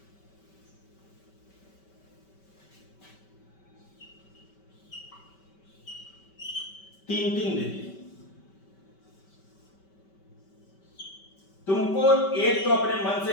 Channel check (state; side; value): late; right; 5.2 ms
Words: तीन तीन दे दिए तुमको, एक तो अपने मन से